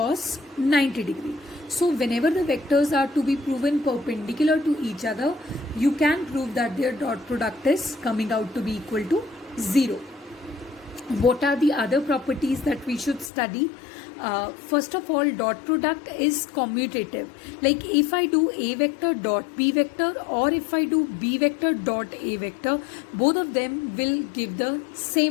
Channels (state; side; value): drops out; right; at 13.3 s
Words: 90 degree. So whenever the vectors are to be proven perpendicular to each other, you can prove that their dot product is coming out to be equal to 0. What are the other properties that we should study? First of all, dot product is commutative. Like if I do A vector dot B vector, or if I do B vector dot A vector, both of them will give the